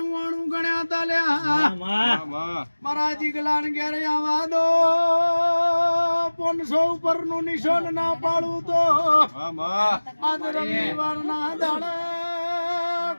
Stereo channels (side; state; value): both; inverted; correlation -1.00